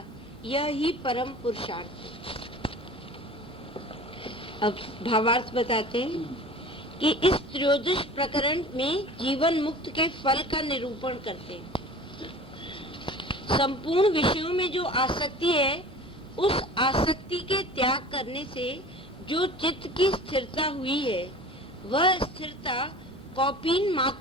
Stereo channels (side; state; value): both; normal; correlation 0.40